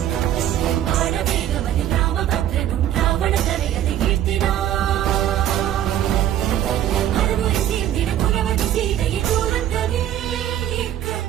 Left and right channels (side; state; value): left; quieter; 11.5 dB